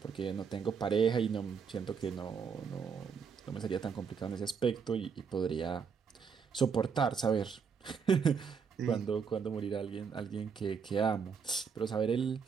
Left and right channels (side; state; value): left; quieter; 6.2 dB